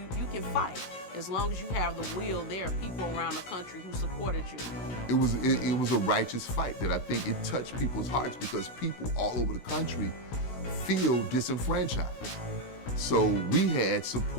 can fight. As long as you have the will, there are people around the country who supported you. It was a righteous fight that I think it touched people's hearts because people all over the country feel disenfranchised. So we had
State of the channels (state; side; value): late; right; 17 ms